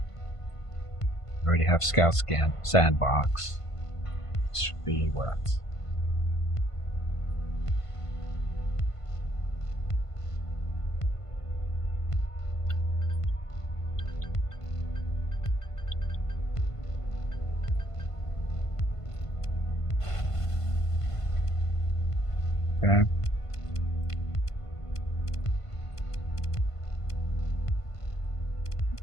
Already have Scout Scan Sandbox. This should be what? Okay.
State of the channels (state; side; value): late; right; 1.5 ms